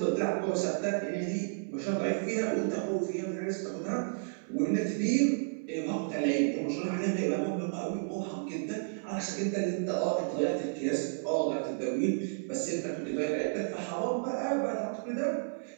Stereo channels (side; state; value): left; silent; 56 dB below the other